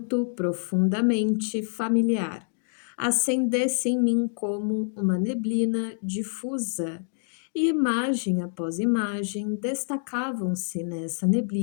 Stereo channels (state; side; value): silent; right; digital silence